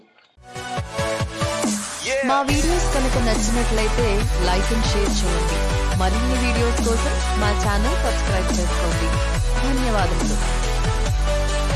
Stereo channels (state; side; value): identical; both; correlation 1.00